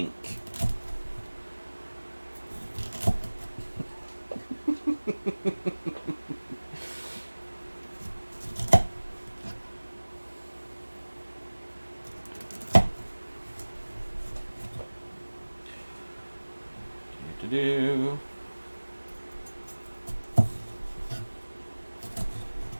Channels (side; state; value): both; inverted; correlation -1.00